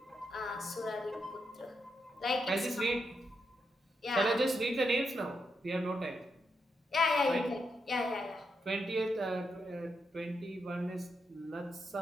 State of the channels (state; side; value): normal; both; correlation 0.83